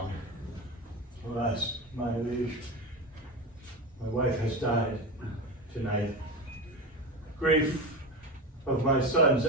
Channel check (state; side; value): normal; both; correlation 0.22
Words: Alas, my liege, my wife has died tonight. Grief of my son's